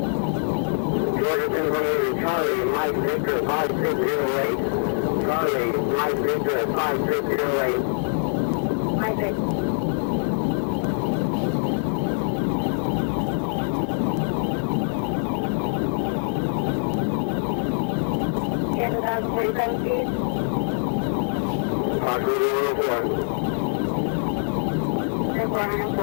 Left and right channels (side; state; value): right; silent; digital silence